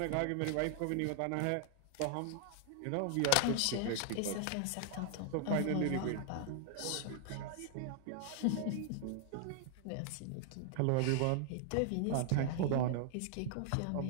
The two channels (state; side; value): different; both; correlation 0.00